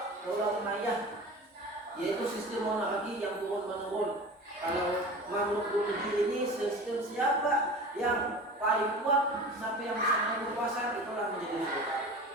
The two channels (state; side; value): normal; both; correlation 0.36